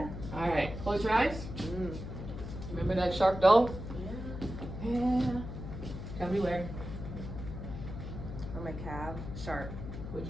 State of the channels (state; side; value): noise; left; hum, 8 dB below the sound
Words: All right, close your eyes. Remember that sharp dull? Yeah. Tell me where. On my calf, sharp.